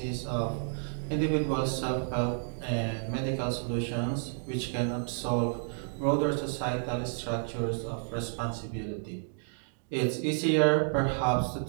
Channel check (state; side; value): silent; left; digital silence